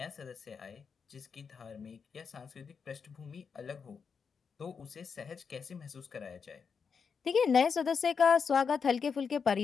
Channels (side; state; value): right; quieter; 6.0 dB